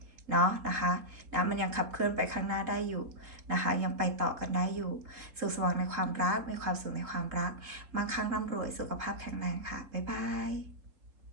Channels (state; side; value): late; left; 3.8 ms